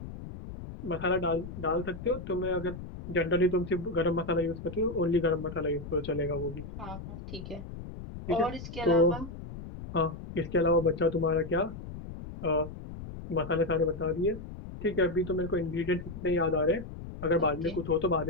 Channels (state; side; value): noise; left; rumble, 11 dB below the sound